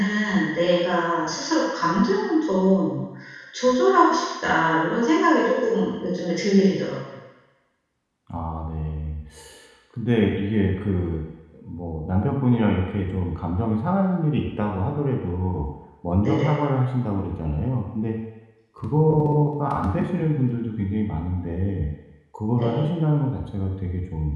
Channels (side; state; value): both; identical; correlation 1.00